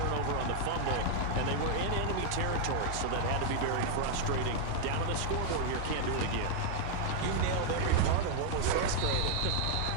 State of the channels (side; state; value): both; different; correlation -0.01